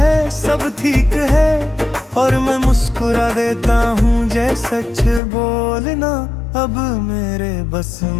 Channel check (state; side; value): drops out; right; at 5.2 s